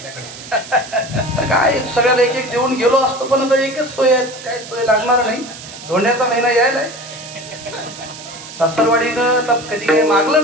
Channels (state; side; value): noise; right; hiss, 14 dB below the sound